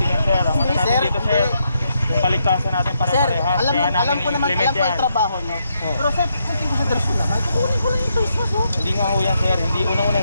yan, sir. Ang ano Hindi, natin sir, dito, hindi. sir. Yung paligtasan natin Sir, pare-parehas. alam Kaya namin ko naman, i-implement alam ko yan. yung trabaho nyo. Pero sir, konting consideration naman. Kukunin ko lang yung face mask, oh. Hindi nga ho yan, sir. Hindi unang-una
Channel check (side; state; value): both; inverted; correlation -0.79